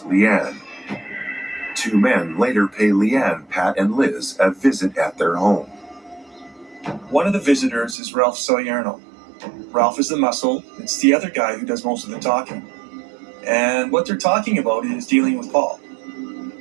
Leanne. Two men later pay Leanne, Pat, and Liz a visit at their home. One of the visitors is Ralph Salerno. Ralph is the muscle. It's the other guy who does most of the talking. And what they're talking about is dealing with Paul.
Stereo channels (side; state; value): left; drops out; at 8.0 s